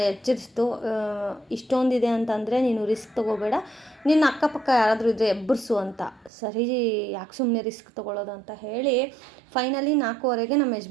ಎಚ್ಚರಿಸ್ತು. ಇಷ್ಟೊಂದಿದೆ ಅಂತಂದರೆ ನೀನು ರಿಸ್ಕ್ ತೊಗೋಬೇಡ, ನಿನ್ನ ಅಕ್ಕಪಕ್ಕ ಯಾರಾದರೂ ಇದ್ದರೆ ಎಬ್ಬರಿಸು ಅಂತ. ಸರಿ ಯಾಕೆ ಸುಮ್ಮನೆ ರಿಸ್ಕ್ ತೊಗೊಳ್ಳೋದು ಅಂತ ಹೇಳಿ ಫೈನಲಿ 4:15ಗೆ ನಮ್ಮ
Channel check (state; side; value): drops out; left; at 6.3 s